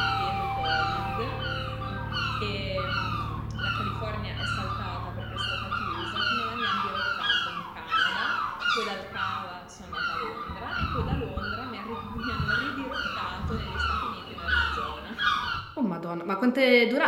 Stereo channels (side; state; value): both; identical; correlation 1.00